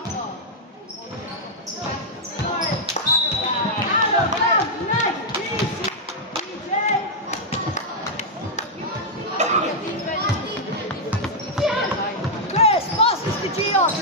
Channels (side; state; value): both; normal; correlation -0.05